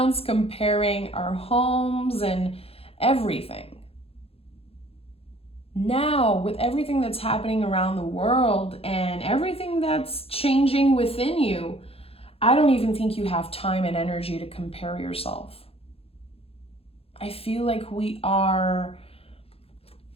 comparing our homes and everything. Now, with everything that's happening around the world and everything that's changing within you, I don't even think you have time and energy to compare yourself. I feel like we are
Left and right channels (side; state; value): right; late; 0.28 ms